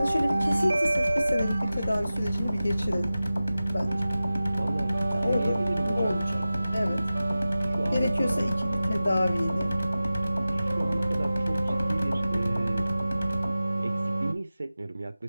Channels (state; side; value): inverted; both; correlation -0.95